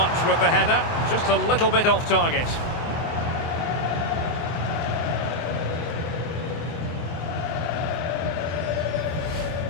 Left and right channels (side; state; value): right; late; 24 ms